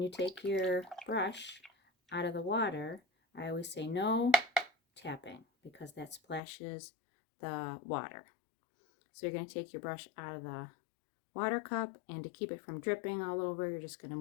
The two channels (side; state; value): right; drops out; at 6.4 s